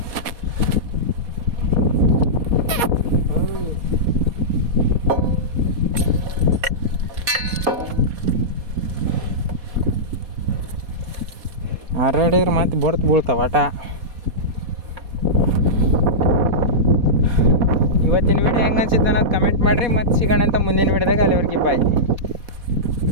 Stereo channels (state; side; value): late; left; 4.2 ms